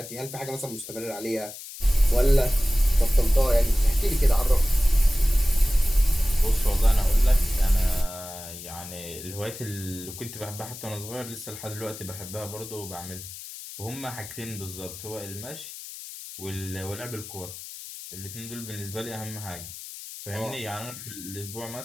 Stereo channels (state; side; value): noise; left; hiss, 12 dB below the sound